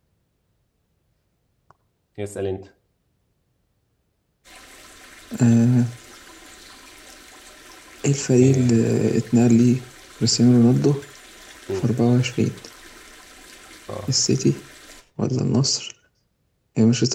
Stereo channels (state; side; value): identical; both; correlation 1.00